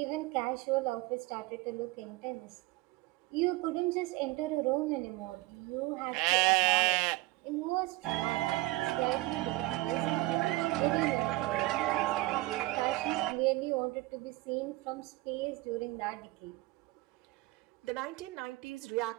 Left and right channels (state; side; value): quieter; left; 19.9 dB